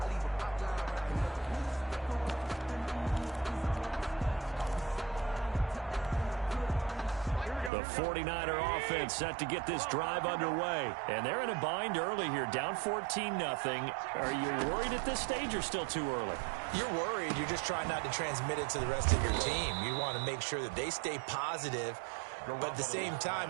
The 49er offense set to get this drive underway. And they're in a bind early here, down 14-0. Are you worried at this stage or still too early? You're worried. You're just trying not to transmit it to the rest of your team. You want to make sure that they stay positive. But at the same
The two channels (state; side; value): drops out; left; at 7.7 s